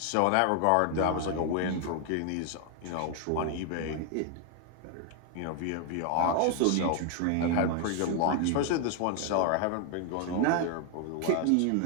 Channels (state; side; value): different; both; correlation 0.00